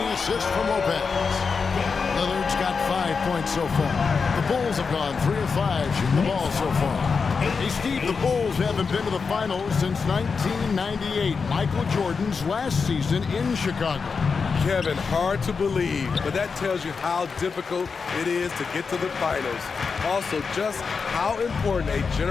assist from Lopez. Lillard's got 5 points so far. The Bulls have gone 3 of 5 shooting the ball so far. Hey, Steve, the Bulls haven't been to the finals since 1998, Michael Jordan's last season in Chicago. Kevin, hard to believe, but that tells you how difficult it is to get to the finals. Also, just how important a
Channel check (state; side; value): quieter; right; 5.2 dB